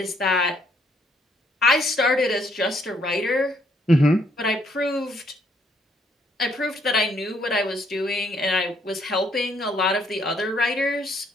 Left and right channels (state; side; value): normal; both; correlation 0.69